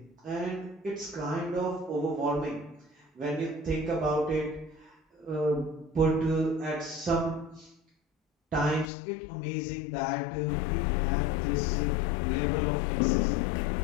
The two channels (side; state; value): right; drops out; at 8.9 s